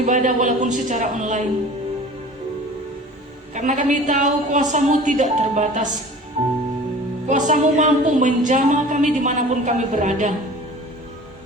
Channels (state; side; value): normal; both; correlation 0.43